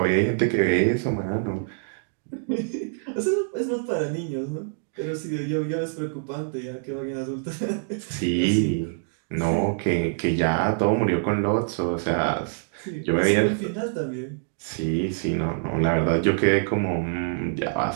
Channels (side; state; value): left; silent; digital silence